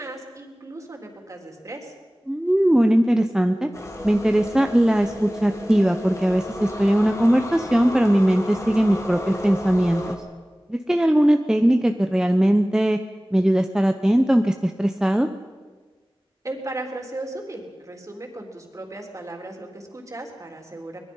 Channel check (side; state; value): both; normal; correlation 0.98